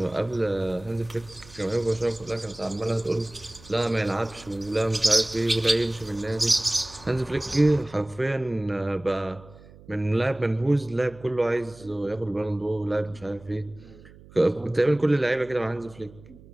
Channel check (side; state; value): right; noise; hum, 22 dB below the sound